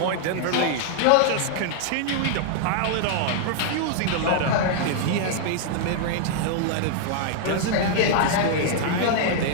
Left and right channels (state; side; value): different; both; correlation -0.01